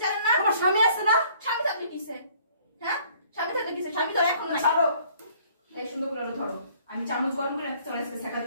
জানেন না? তোমার স্বামী আছে না? স্বামী থাকলে কিসে? হ্যাঁ, স্বামী থাকলে কিসে? স্বামী তো এখন নাই। ছাড়ো। এই সুন্দর করে ধরো, আমি চামচ গরম করে আনতে চলে আসছে শেখা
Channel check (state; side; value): inverted; both; correlation -0.58